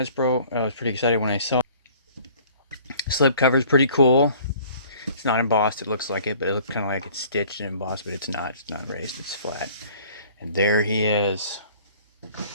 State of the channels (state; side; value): inverted; both; correlation -0.52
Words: I was pretty excited when I saw it. Slip cover is pretty cool. It's not embossed. It looks like it, but it looks kind of like it's stitched and embossed, but it's not. It's not raised. It's flat. And there he is,